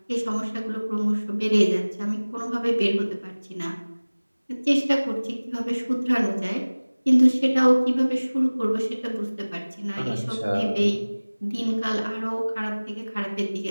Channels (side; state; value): both; inverted; correlation -1.00